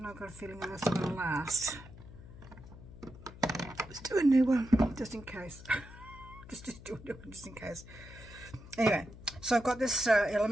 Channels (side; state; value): left; noise; hum, 17 dB below the sound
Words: know, I've got a feeling that that's not going to last. Let's do a new one just in case. just do a new one just in case. Anyway, so I've got this